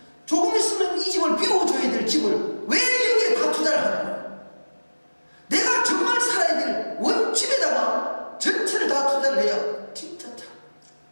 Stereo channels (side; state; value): both; inverted; correlation -1.00